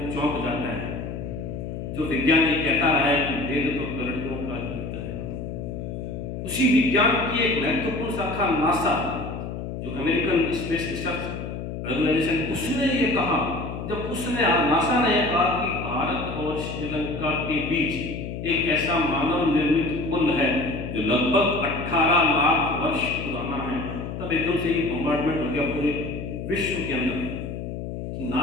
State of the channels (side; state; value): left; noise; hum, 6 dB below the sound